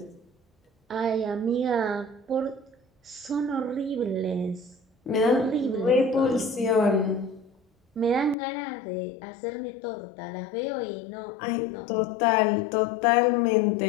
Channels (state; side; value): drops out; right; at 8.3 s